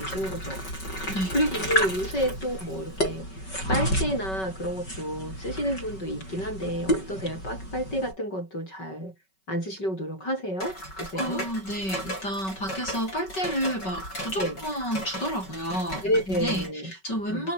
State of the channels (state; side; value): late; right; 5.3 ms